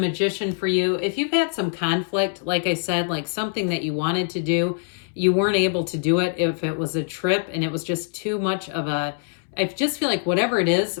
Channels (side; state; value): right; silent; 63 dB below the other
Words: for you. If you've had some conflict, like I said, like something that you wanted to do, you weren't able to do it. If it was a trip and it was just too much of a, I just feel like whatever it is